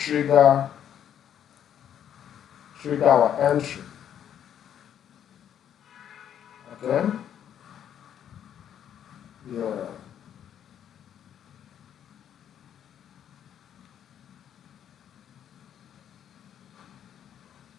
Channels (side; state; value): right; quieter; 9.6 dB